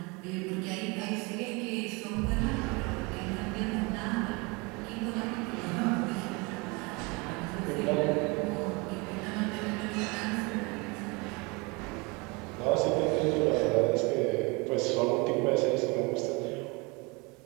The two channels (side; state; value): left; quieter; 27.7 dB